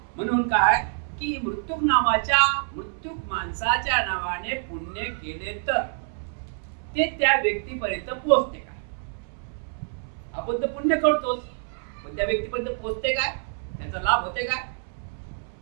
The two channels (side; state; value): left; silent; 61 dB below the other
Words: म्हणून काय की मृत्यूक माणसाच्या नावाने पुण्य केले तर ते त्या व्यक्तीपर्यंत पोहोचते काय? आपण तर पुण्य करतोच, पण त्या व्यक्तीपर्यंत पोहोचते काय? त्याचा लाभ होते काय?